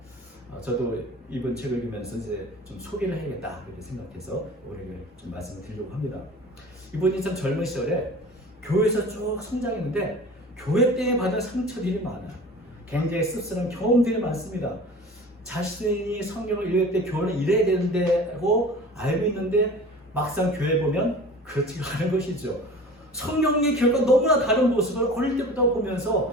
저도 이번 책을 읽으면서 이제 좀 소개를 해야겠다 이렇게 생각해서 오늘 좀 말씀을 드리려고 합니다. 이분이 참 젊은 시절에 교회에서 쭉 성장했는데 교회 때문에 받은 상처들이 많아요. 굉장히 씁쓸한 경험들이 많습니다. 자신이 성경을 읽을 때 교회는 이래야 되는데고 알고 있는데 막상 교회 보면 그렇지가 않은 것이죠. 성령의 교회가 너무나 다른 모습을 어릴 때부터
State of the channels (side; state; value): both; normal; correlation 0.40